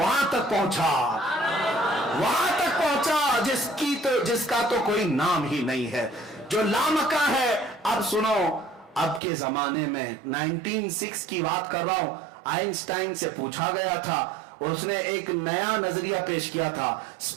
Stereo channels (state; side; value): drops out; left; at 9.2 s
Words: तक पहुंचा, वहां तक पहुंचा जिसका तो कोई नाम ही नहीं है, जो लामका है। अब सुनो, अब के जमाने में 1906 की बात कर रहा हूं, आइंस्टाइन से पूछा गया था, उसने एक नया नजरिया पेश किया था,